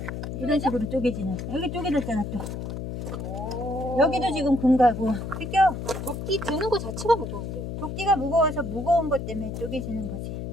이런 식으로 쪼개지는. 여기 쪼개졌잖아 또. 오. 여기도 지금 금가고. 비껴. 도끼 드는 거 자체가 무거운데. 도끼가 무거워서 무거운 것 때문에 쪼개지는 거지.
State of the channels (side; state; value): left; noise; hum, 6 dB below the sound